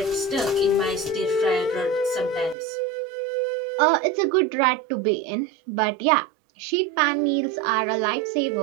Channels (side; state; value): left; drops out; at 2.6 s